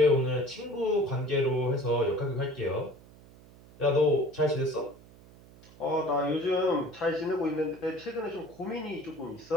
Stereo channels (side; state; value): right; noise; hum, 23 dB below the sound